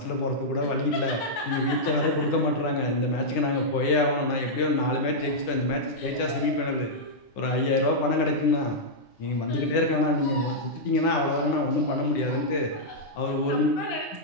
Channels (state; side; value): late; right; 9.9 ms